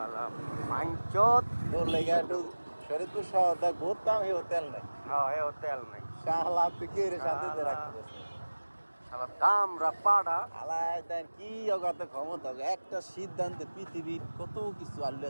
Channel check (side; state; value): both; inverted; correlation -1.00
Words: মাইঞ্চত তোর লেগে একটু শরীরপুর শহর দেখ ঘুরতাম এই হোটেল নাই হ্যাঁ এ হোটেল নাই শালা তুই কে রে সাথে রাখতে শালা দাম রাপাড়া আলাই দেন কি অগাত ক্ষমতা একটা সিদ্ধান্তে পৃথিবীর কত কিছু আল্লাহ